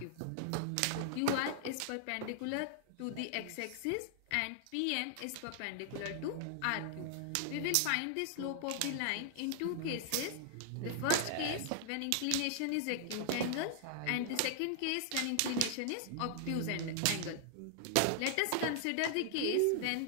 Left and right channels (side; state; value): both; different; correlation -0.01